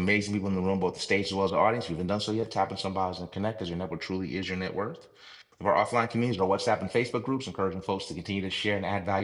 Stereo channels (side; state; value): both; identical; correlation 1.00